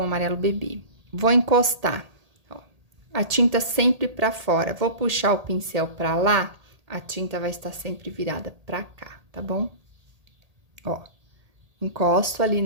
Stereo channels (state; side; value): late; left; 1.8 ms